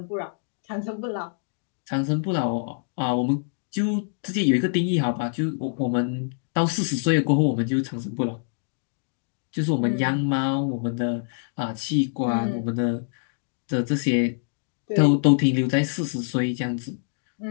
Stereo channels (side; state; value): right; silent; digital silence